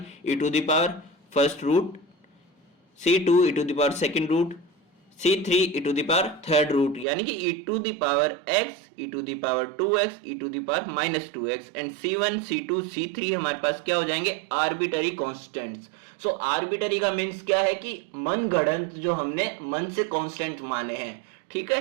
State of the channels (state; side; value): drops out; left; at 7.1 s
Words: e to the power first root, c2 e to the power second root, c3 e to the power third root, यानी कि e to the power x, e to the power 2x, e to the power -2x and c1, c2, c3 हमारे पास क्या हो जाएंगे arbitrary constants. So arbitrary का means क्या है कि मनगढ़ंत जो हमने मन से कांस्टेंट माने हैं, ठीक